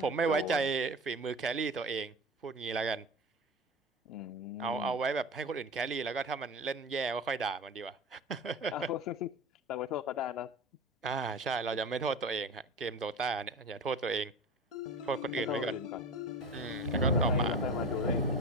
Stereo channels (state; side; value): normal; both; correlation 0.31